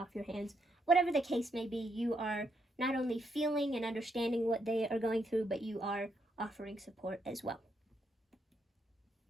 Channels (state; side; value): normal; both; correlation 0.78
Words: your hands? Whatever the case may be, you are not only feeling and understanding what they are going through, but you are offering support as well.